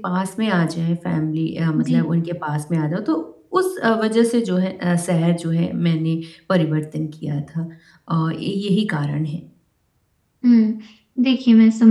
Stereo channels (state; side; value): identical; both; correlation 1.00